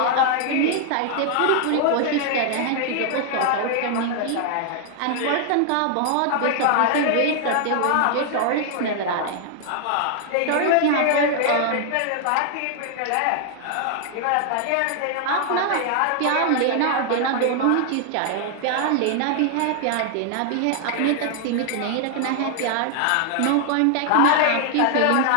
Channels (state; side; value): different; both; correlation 0.00